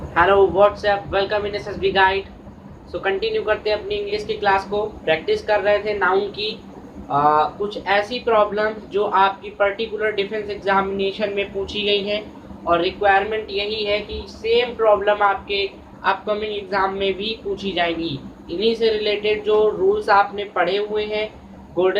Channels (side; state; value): both; identical; correlation 1.00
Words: Hello WhatsApp, welcome in SSB guide. So continue करते हैं अपनी इंग्लिश की क्लास को। प्रैक्टिस कर रहे थे नाउन की कुछ ऐसी प्रॉब्लम जो आपकी पर्टिकुलर डिफेंस एग्जामिनेशन में पूछी गई हैं और रिक्वायरमेंट यही है कि सेम प्रॉब्लम आपके अपकमिंग एग्ज़ाम में भी पूछी जाएंगी। इन्हीं से रिलेटेड जो रूल्स आपने पढ़े हुए हैं,